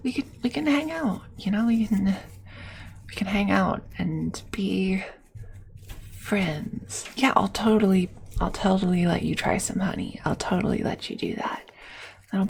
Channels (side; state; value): both; identical; correlation 1.00